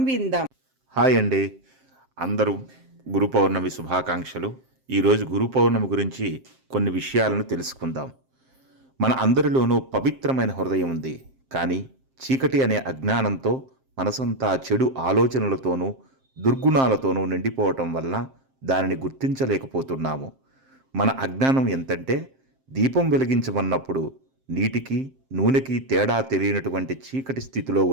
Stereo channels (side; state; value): left; late; 7.6 ms